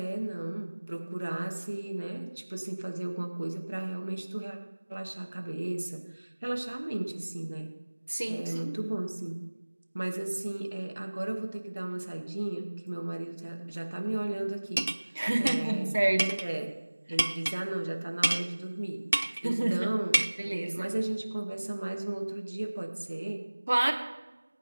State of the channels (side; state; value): both; inverted; correlation -1.00